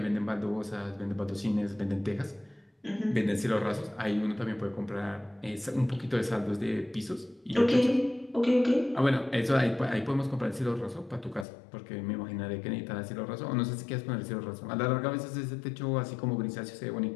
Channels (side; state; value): right; drops out; at 11.5 s